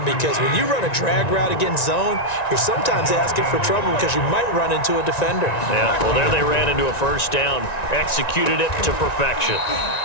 because when you run a drag route against zone, you're sometimes asking for trouble because you might run into a defender. Yeah, well, there they ran into a 1st down. Executed it to perfection.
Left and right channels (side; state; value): right; late; 1.9 ms